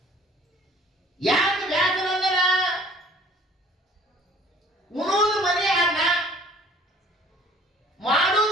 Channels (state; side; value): normal; both; correlation 0.53